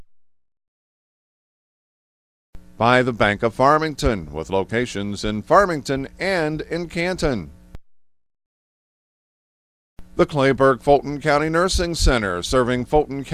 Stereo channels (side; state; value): both; identical; correlation 1.00